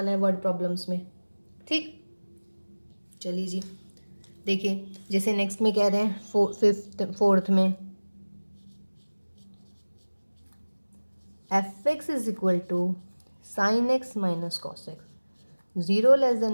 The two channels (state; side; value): inverted; both; correlation -1.00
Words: है वर्ड प्रॉब्लम्स में। ठीक, चलिए जी देखिए, जैसे नेक्स्ट में कह रहे हैं फोर्थ में F x is equal to sine x minus cos x, zero less